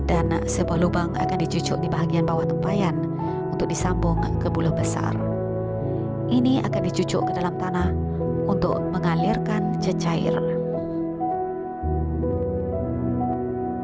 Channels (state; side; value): identical; both; correlation 1.00